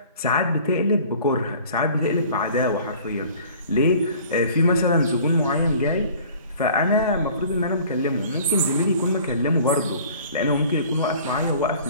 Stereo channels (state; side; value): inverted; both; correlation -0.49